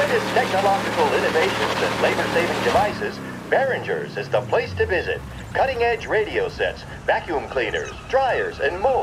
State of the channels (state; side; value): identical; both; correlation 1.00